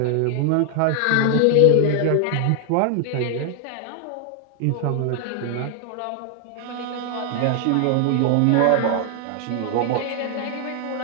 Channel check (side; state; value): both; different; correlation 0.00